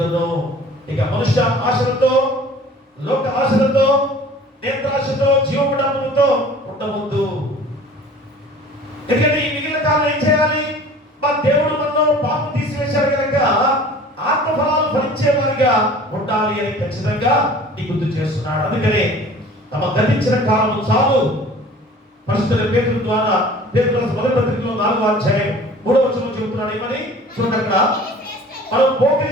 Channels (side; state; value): both; normal; correlation 0.46